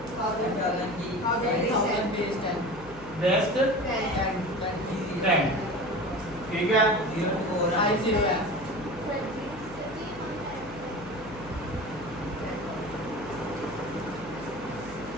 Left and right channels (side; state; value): left; noise; hum, 17 dB below the sound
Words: base 10, ठीक है।